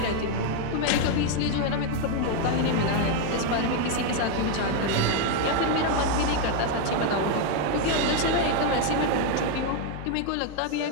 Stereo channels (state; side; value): different; both; correlation 0.01